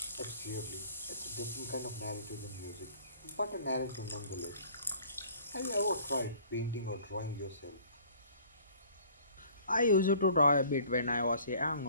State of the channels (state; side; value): inverted; both; correlation -0.53